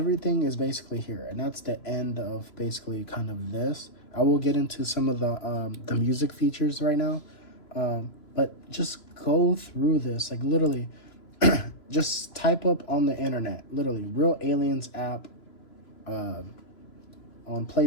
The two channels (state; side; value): late; right; 3.0 ms